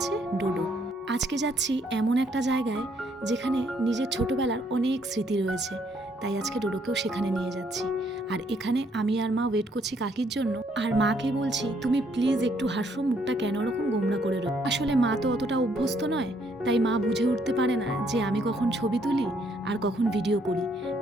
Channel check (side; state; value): both; normal; correlation 0.69